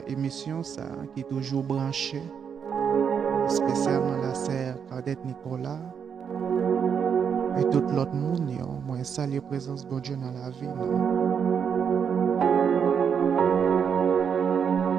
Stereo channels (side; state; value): left; quieter; 7.2 dB